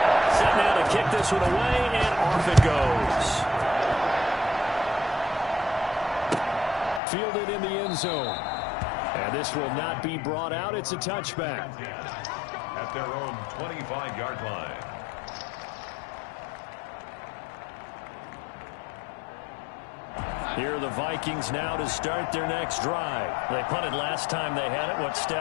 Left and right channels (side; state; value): right; drops out; at 7.0 s